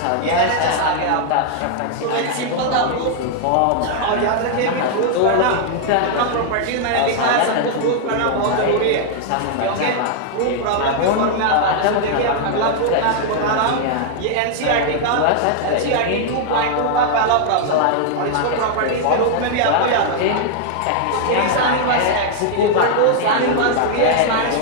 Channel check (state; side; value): different; both; correlation 0.00